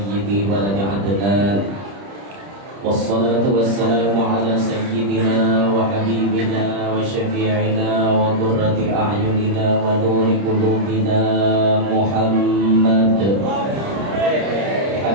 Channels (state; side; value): late; left; 30 ms